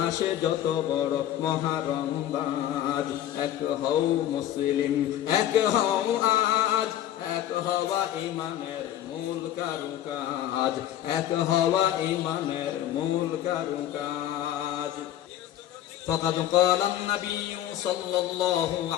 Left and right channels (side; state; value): right; quieter; 12.0 dB